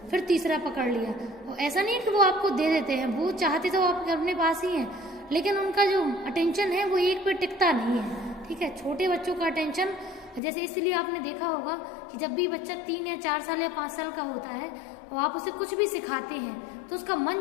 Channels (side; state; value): right; drops out; at 10.4 s